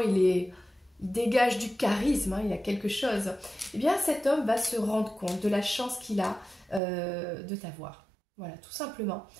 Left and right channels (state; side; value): drops out; left; at 6.8 s